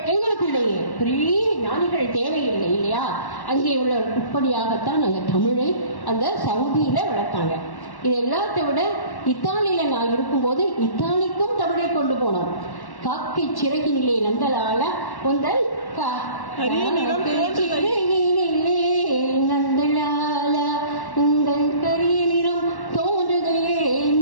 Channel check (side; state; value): right; late; 1.1 ms